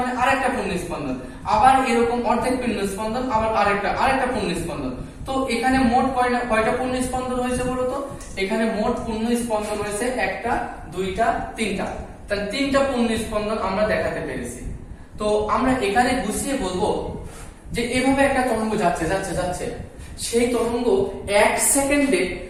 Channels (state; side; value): identical; both; correlation 1.00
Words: আরেকটা পুণ্যস্পন্দন, আবার এরকম অর্ধেক পুণ্যস্পন্দন, আবার আরেকটা পুণ্যস্পন্দন। তো এখানে মোট কয়টা পুণ্যস্পন্দন হয়েছে বলো তো? এখানে মোট পুণ্যস্পন্দন হয়েছে 1টা 2টা 3টা। তাহলে 3টা পুণ্যস্পন্দন আমরা দেখাতে পেরেছি। তো আমরা এখানে গুছিয়ে বলবো যে এভাবে একটা তরঙ্গ যাচ্ছে, সেই তরঙ্গ 1 সেকেন্ডে